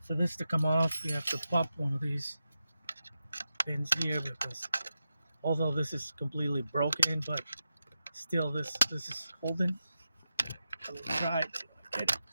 for this to come off, you have to pop one of these pins here, because although this is completely broken, but still this is holding. I'm gonna try to get it.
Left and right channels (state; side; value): inverted; both; correlation -0.90